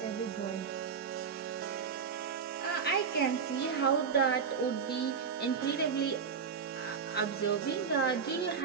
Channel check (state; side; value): quieter; left; 6.3 dB